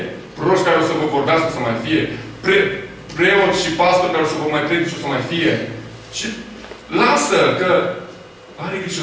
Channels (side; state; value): both; identical; correlation 1.00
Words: Proroși care o să vă vorbească o să mai fie. Preoți și pastori care o să vă mai predice o să mai fie. Și lasă că are grijă